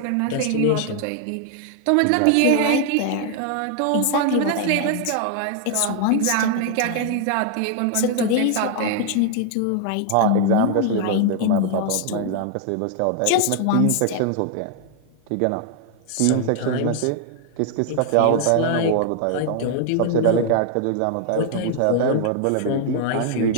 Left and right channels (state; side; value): different; both; correlation 0.00